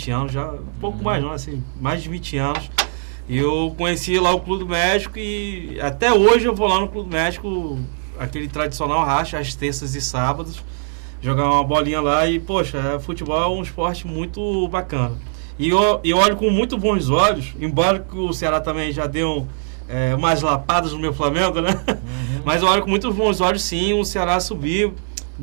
anos, já, pouco mais não, assim, mais de 20 anos, eu conheci lá o Clube do México e até hoje eu vou lá no Clube do México, aquele tradicional racha, às terças e sábados, jogar uma bolinha lá e, poxa, futebol é um esporte muito bacana. E eu olho com muito bons olhos, embora que o Ceará também já deu umas lapadas no meu Flamengo, né? Mas eu olho com muito bons olhos, sim, o Ceará subiu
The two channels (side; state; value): left; silent; 66 dB below the other